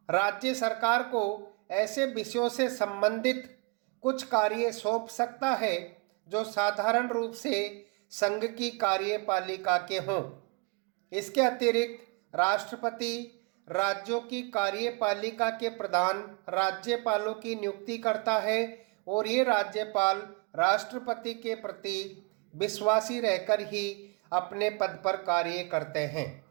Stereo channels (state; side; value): quieter; left; 29.6 dB